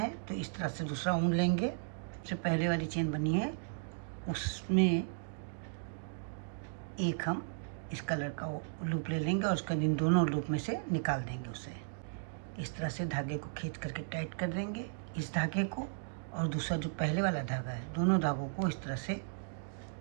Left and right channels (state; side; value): silent; left; digital silence